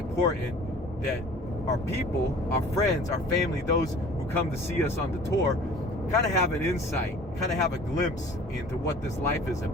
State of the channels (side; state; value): both; normal; correlation 0.47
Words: that our people, our friends, our family, those who come to see us on the tour, kind of have an insight, kind of have a glimpse into what this life is